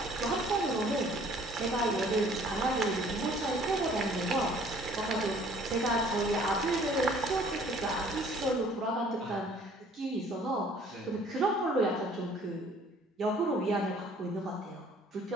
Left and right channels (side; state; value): both; normal; correlation 0.56